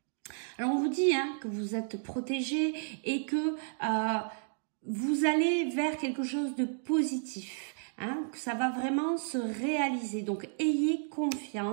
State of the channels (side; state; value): left; silent; digital silence